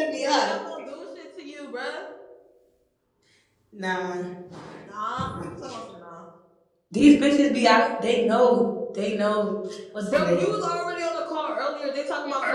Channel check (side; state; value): both; identical; correlation 1.00